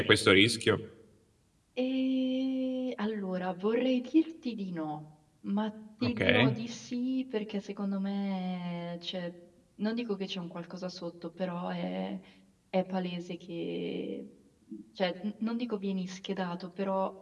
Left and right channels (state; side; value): identical; both; correlation 1.00